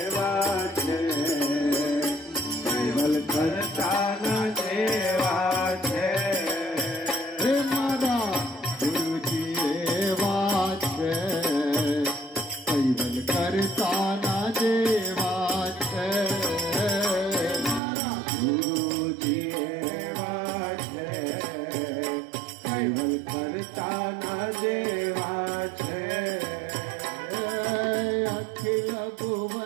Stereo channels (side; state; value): left; drops out; at 17.8 s